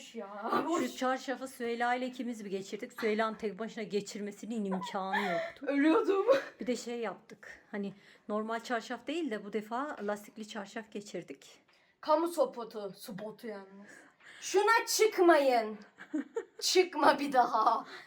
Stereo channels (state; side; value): identical; both; correlation 1.00